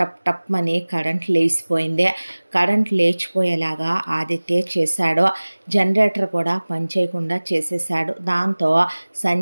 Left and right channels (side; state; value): both; inverted; correlation -1.00